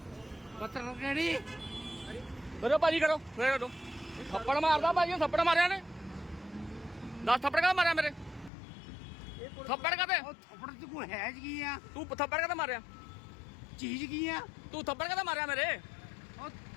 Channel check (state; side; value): drops out; right; at 8.5 s